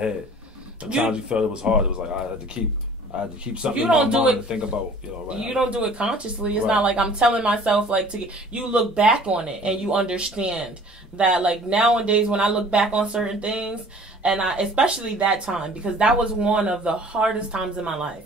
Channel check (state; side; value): normal; both; correlation 0.49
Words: Sometimes you felt it was hard. It was like I had to keep something in my mind to think about. Right. You don't do it consciously. It's not like I'm telling myself you look back on it and you understand that nowadays when I look back on certain things, and especially that time, because that was one of the hardest times in my